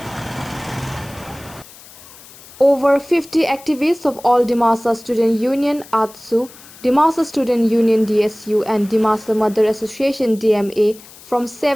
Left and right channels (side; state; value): left; noise; hiss, 21 dB below the sound